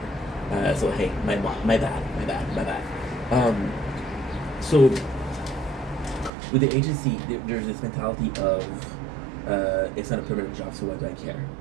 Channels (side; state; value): left; drops out; at 6.3 s